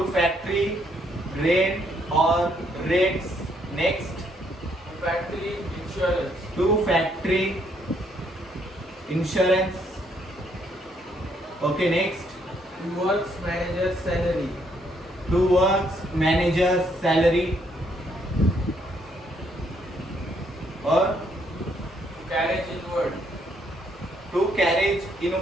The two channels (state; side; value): normal; both; correlation 0.71